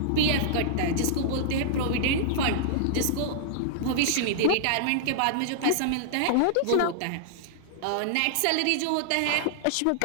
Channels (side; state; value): both; different; correlation -0.01